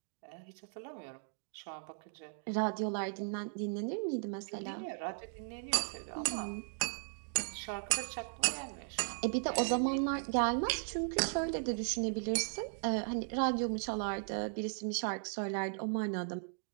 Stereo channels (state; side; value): silent; left; digital silence